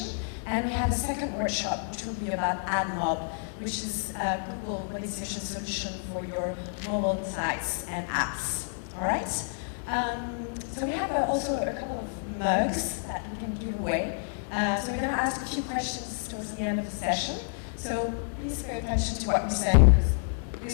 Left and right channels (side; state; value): right; silent; 58 dB below the other